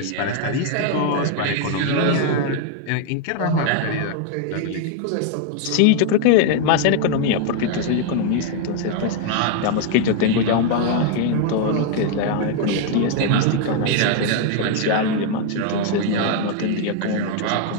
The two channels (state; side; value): different; both; correlation 0.00